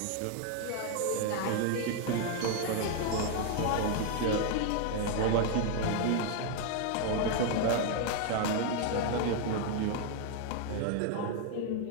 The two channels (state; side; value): different; both; correlation 0.00